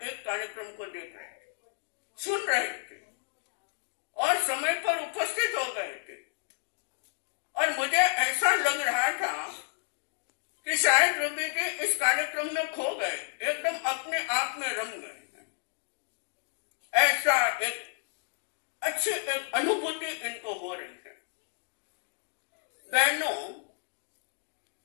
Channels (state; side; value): silent; right; digital silence